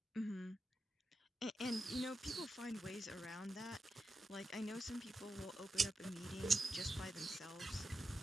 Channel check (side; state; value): both; normal; correlation 0.89